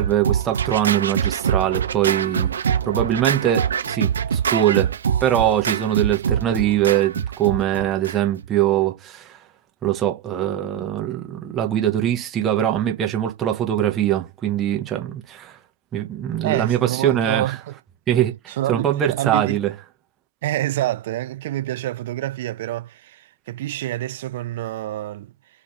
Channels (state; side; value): quieter; left; 10.4 dB